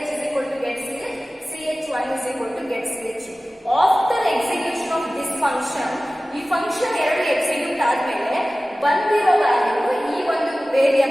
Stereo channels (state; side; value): normal; both; correlation 0.97